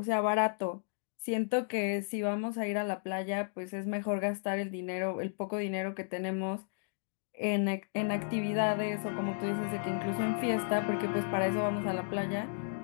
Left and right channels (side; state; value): right; silent; digital silence